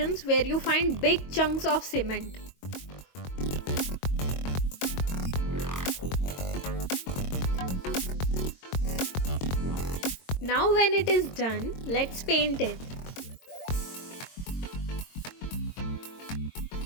where you find big chunks of cement. Now when it is done, let's paint it.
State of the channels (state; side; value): late; right; 22 ms